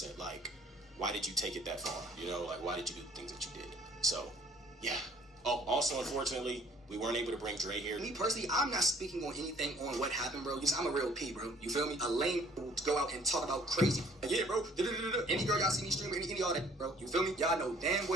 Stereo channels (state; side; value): normal; both; correlation 0.57